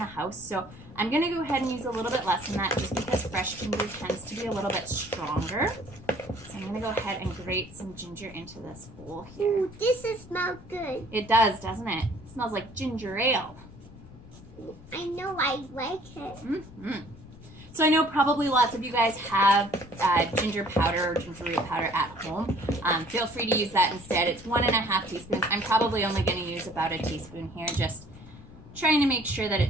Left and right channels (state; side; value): noise; left; rumble, 19 dB below the sound